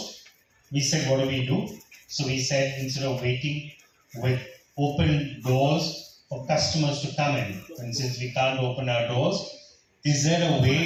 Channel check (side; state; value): both; identical; correlation 1.00